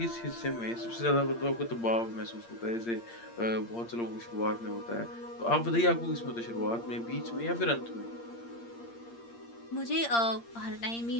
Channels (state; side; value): late; right; 8.6 ms